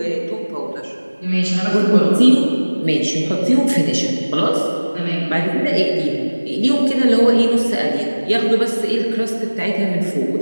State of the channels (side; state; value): both; inverted; correlation -1.00